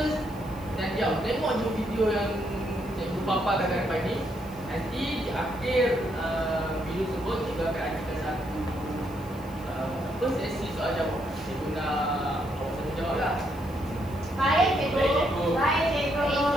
dan diam. Tengok je video yang cikgu paparkan kat depan ni. Nanti di akhir video tersebut, cikgu akan adakan satu sesi soal jawab. Cikgu nak awak semua jawab lah. Baik cikgu. Baik cikgu. Baik cikgu.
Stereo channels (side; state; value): left; noise; hiss, 23 dB below the sound